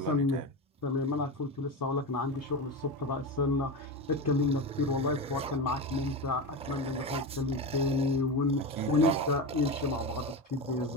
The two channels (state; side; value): normal; both; correlation 0.20